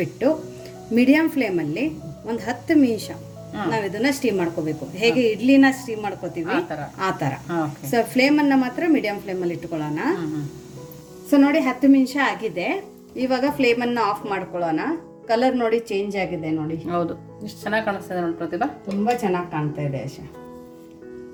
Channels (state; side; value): identical; both; correlation 1.00